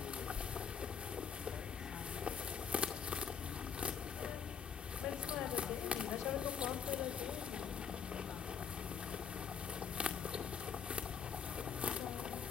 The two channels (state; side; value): quieter; right; 7.2 dB